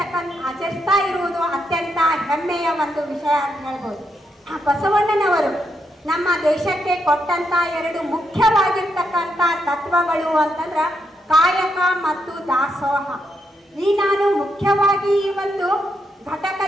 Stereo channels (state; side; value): normal; both; correlation 0.80